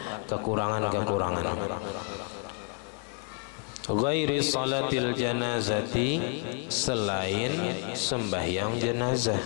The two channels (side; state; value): right; quieter; 37.0 dB